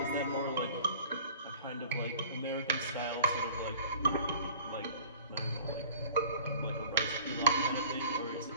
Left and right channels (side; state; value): both; inverted; correlation -0.47